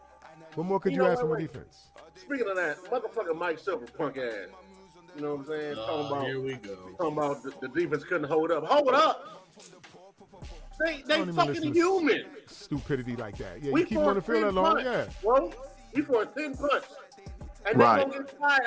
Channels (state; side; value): identical; both; correlation 1.00